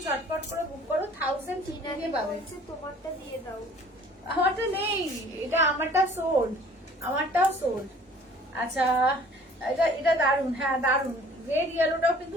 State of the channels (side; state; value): both; normal; correlation 0.52